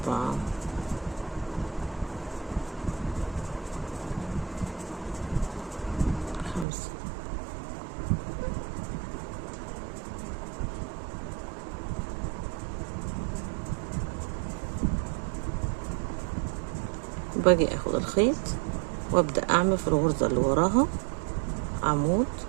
5. باجي اخد الخيط وابدأ اعمل في الغرزة اللي وراها عمود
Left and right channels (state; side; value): drops out; left; at 6.7 s